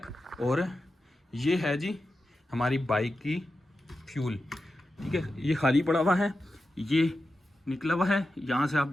और ये है जी हमारी बाइक की फ्यूल। ठीक है, ये खाली पड़ा हुआ है, ये निकला हुआ है, यहाँ से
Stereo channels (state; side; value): normal; both; correlation 0.91